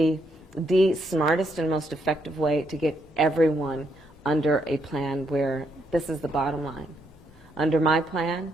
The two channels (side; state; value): both; normal; correlation 0.76